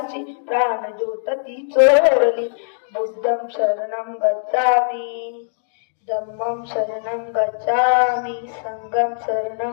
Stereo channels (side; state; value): right; silent; digital silence